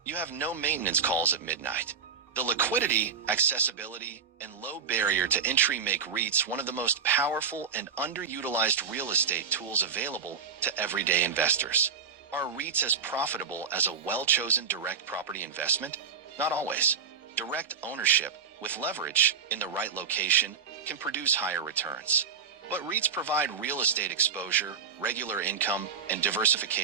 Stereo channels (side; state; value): left; quieter; 6.1 dB